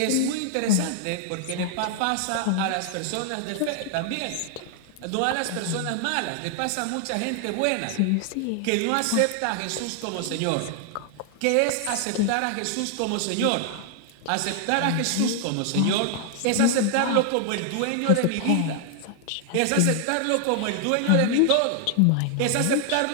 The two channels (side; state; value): both; different; correlation 0.00